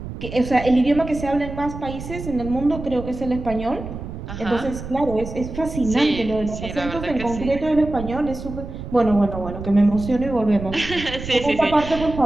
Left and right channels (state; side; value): noise; right; rumble, 9 dB below the sound